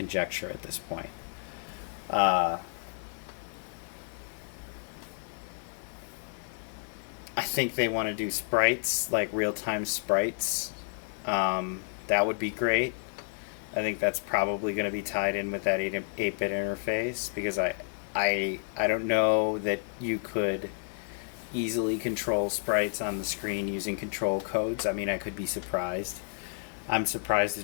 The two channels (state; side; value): silent; right; digital silence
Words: at this point. I think they want to do sprites, like real-time sprites. That would be great. I think that's probably going to be tied in with that 8-bit interface, because I don't know that you could easily control sprites on the screen using control codes. I mean, I could be surprised. I'm surprised